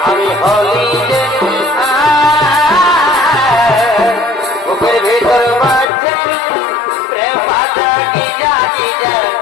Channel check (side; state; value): right; drops out; at 5.9 s